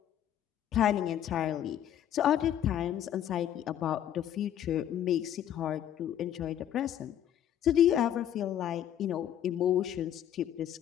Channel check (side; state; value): right; quieter; 10.6 dB